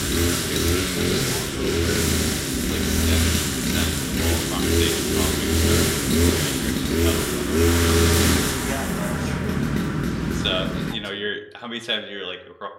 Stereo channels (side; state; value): both; identical; correlation 1.00